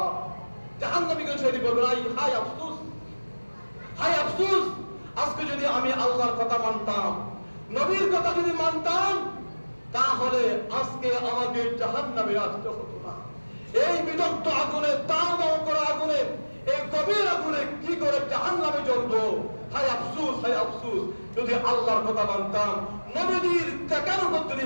জাহান্নামীগণ সেদিন বলবে, হায় আফসোস, হায় আফসোস, আজকে যদি আমি আল্লাহর কথা মানতাম, নবীর কথা যদি মানতাম, তাহলে আজকে আমাকে জাহান্নামে আসতে হতো না। এই বিদগ্ধ আগুনে, দাও করা আগুনে, এই গভীর আগুনে কি করে জাহান্নামে জ্বলবো? হায় আফসোস, হায় আফসোস, যদি আল্লাহর কথা মানতাম, নবীজির দেখানোর কথা যদি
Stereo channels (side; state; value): both; inverted; correlation -1.00